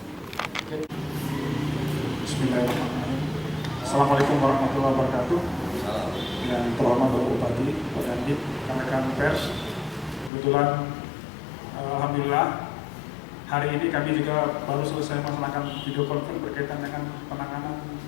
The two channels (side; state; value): right; drops out; at 10.3 s